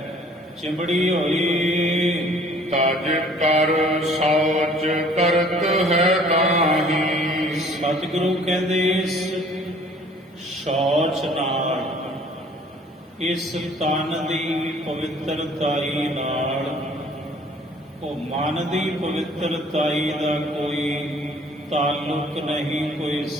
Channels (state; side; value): normal; both; correlation 0.54